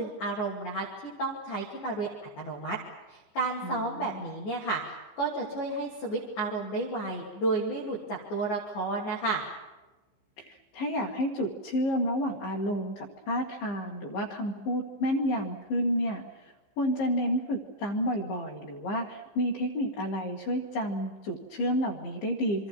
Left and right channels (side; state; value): right; late; 15 ms